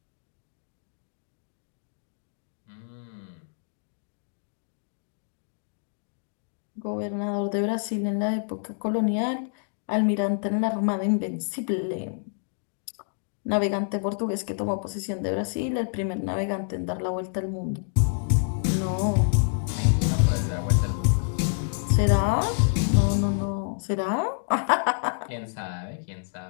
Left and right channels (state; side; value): silent; right; digital silence